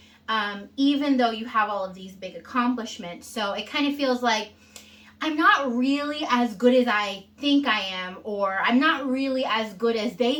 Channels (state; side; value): identical; both; correlation 1.00